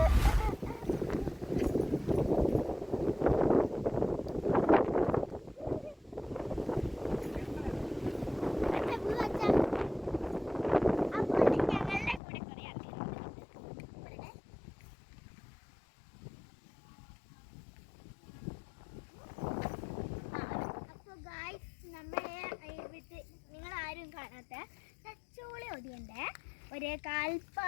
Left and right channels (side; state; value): right; drops out; at 12.2 s